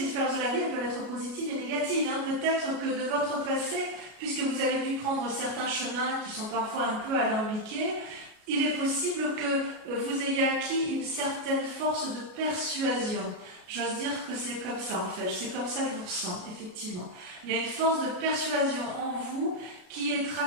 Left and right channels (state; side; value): late; left; 33 ms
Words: de la vie, elles peuvent être positives et négatives. Peut-être que de votre passé, puisque vous avez pu prendre certains chemins qui sont parfois un peu alambiqués, il est possible que vous ayez acquis une certaine force de persuasion. J'ose dire que c'est comme ça en fait, c'est comme ça que je vous ressens, effectivement. Il y a une force de persuasion en vous qui est